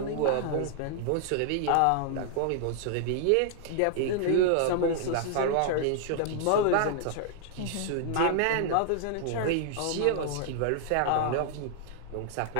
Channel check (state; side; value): different; both; correlation 0.00